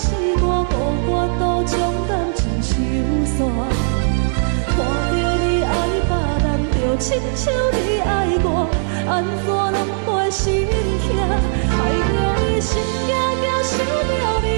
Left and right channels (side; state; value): left; silent; 67 dB below the other